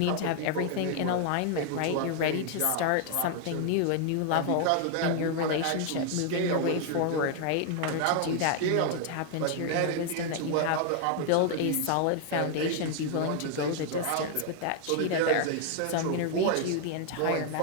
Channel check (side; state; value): both; different; correlation 0.00